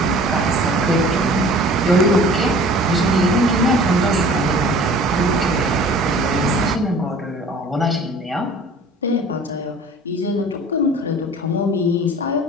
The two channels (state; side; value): normal; both; correlation 0.46